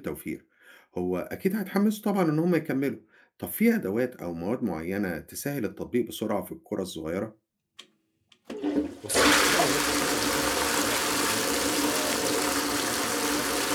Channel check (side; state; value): both; identical; correlation 1.00